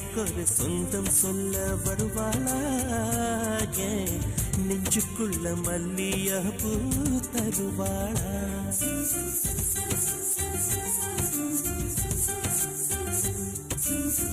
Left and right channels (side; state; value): both; identical; correlation 1.00